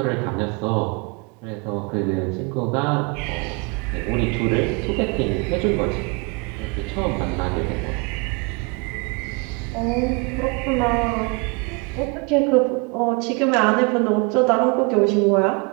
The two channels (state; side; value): quieter; left; 30.1 dB